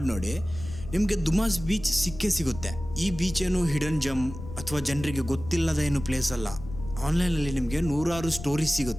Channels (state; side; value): noise; left; rumble, 12 dB below the sound